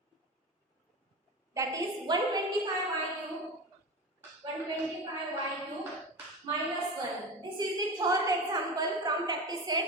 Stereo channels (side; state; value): both; normal; correlation 0.27